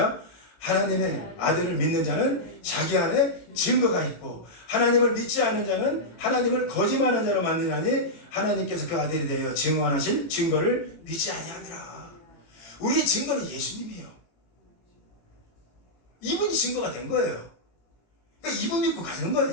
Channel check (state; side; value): late; right; 18 ms